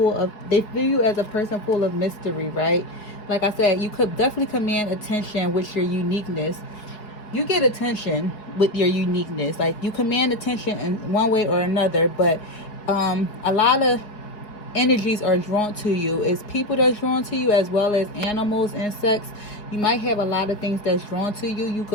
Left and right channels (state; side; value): late; right; 4.8 ms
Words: of, they view you as a person full of mystery, right? Like I said, you could definitely command attention with your uniqueness. You get attention with your uniqueness. Like, you command attention in one way or another, but a lot of energies are drawn to you. It's people that's drawn to you, as well as animals, insects. You might have a lot of things that's drawn to you. You